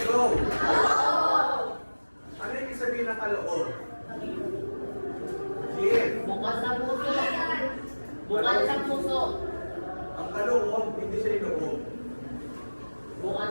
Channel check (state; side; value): inverted; both; correlation -1.00